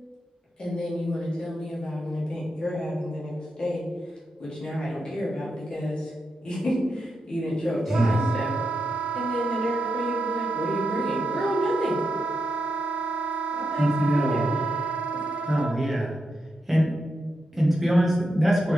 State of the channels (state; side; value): normal; both; correlation 0.85